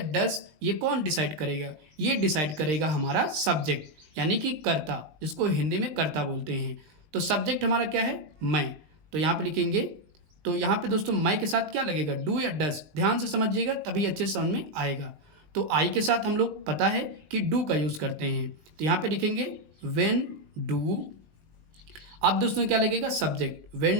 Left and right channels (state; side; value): late; left; 20 ms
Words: डस, ये कौन डिसाइड करेगा, ये डिसाइड करेगा हमारा सब्जेक्ट यानी कि कर्ता, जिसको हिंदी में कर्ता बोलते हैं। तो सब्जेक्ट हमारा क्या है, मैं, तो यहाँ पे लिखेंगे। तो यहाँ पे दोस्तों मैं के साथ क्या लगेगा, डू या डस, ध्यान से समझिएगा तभी अच्छे से समझ में आएगा। तो आई के साथ हम लोग पता है कि डू का यूज़ करते हैं, तो यहाँ पे लिखेंगे व्हेन डू। अब दोस्तों क्या लगेगा, subject,